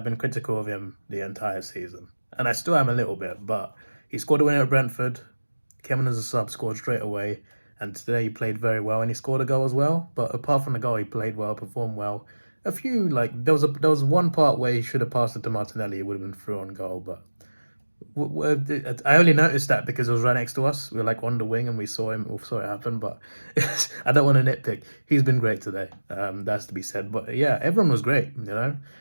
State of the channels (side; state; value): both; inverted; correlation -1.00